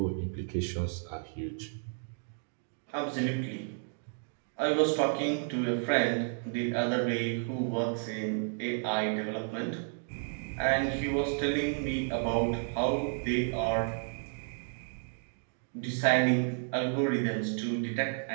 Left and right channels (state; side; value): silent; left; 56 dB below the other